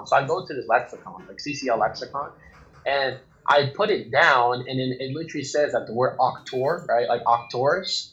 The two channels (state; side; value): identical; both; correlation 1.00